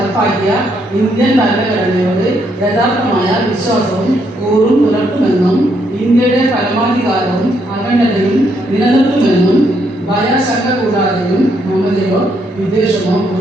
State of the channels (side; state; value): both; normal; correlation 0.74